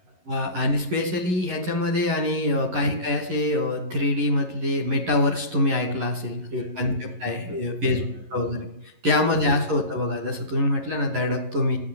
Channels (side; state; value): left; late; 11 ms